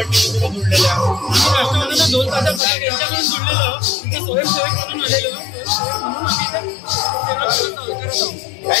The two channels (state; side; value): drops out; right; at 2.6 s